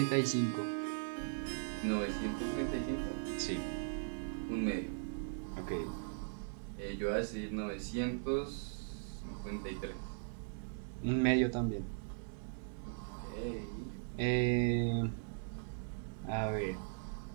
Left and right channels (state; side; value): silent; left; digital silence